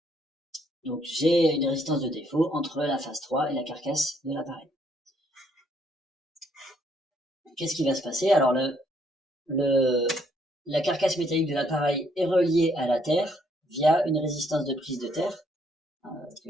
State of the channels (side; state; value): both; normal; correlation 0.69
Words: Donc, j'ai une résistance de défaut entre la phase 3 et la carcasse de l'appareil. Qu'est-ce qui va se passer? Alors, la carcasse métallique de l'appareil est reliée à la terre via une résistance de prise de terre